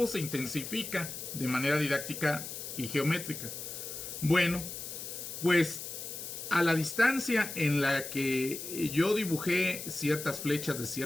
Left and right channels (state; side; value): noise; left; hiss, 8 dB below the sound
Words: se intensifica de manera didáctica y geométrica? Bueno, pues a la distancia en la que yo dibujé ciertas flechas de